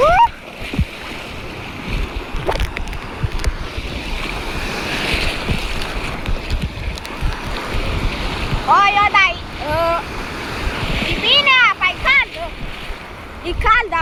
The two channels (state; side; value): identical; both; correlation 1.00